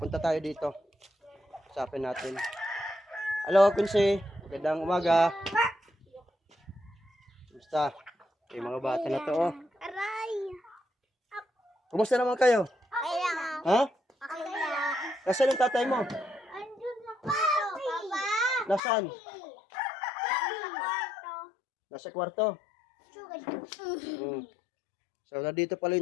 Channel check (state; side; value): drops out; right; at 18.8 s